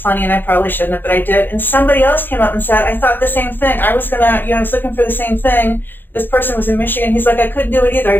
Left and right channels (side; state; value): right; late; 0.096 ms